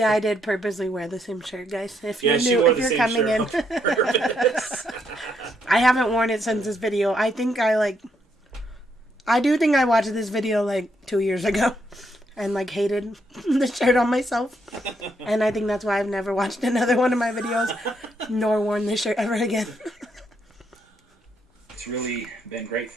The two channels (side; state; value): both; normal; correlation 0.75